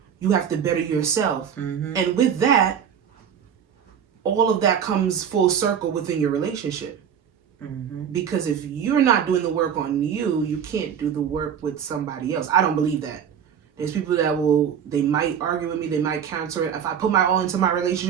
You have to better yourself. And with that, all of that comes full circle within your relationship. Because if you're not doing the work on you, you can't do the work with somebody else. I don't believe that. There's people that they might argue with me, they might counter it. If I put my all into my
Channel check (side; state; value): left; quieter; 8.2 dB